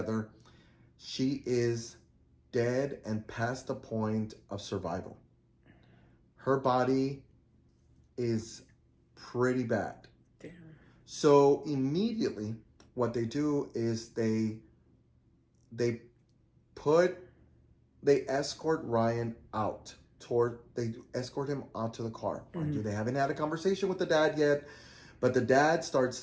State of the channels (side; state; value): both; identical; correlation 1.00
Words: She is dead and past the point of survival. Her body is pretty bad. Damn. So immediately, what they do is they escort Ryan out they escort him out to the car. Mm-hmm. They haven't had a conversation with the dad yet, but the dad starts